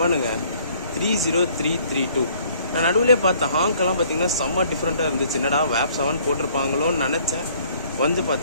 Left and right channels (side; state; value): both; inverted; correlation -0.59